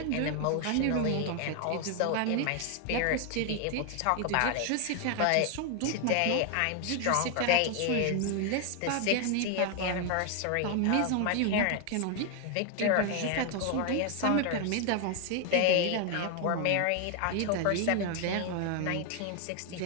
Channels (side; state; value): both; different; correlation 0.00